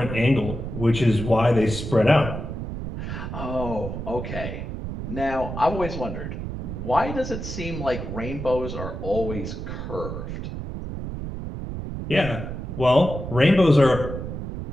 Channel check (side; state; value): right; noise; rumble, 6 dB below the sound